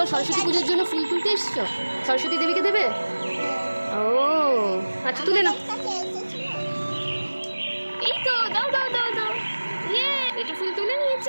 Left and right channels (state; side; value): inverted; both; correlation -1.00